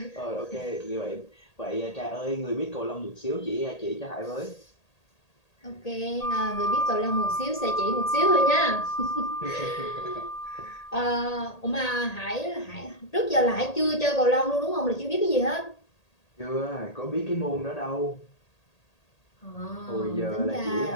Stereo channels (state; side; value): late; right; 1.8 ms